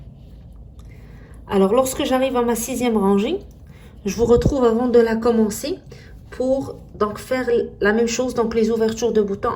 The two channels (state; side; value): identical; both; correlation 1.00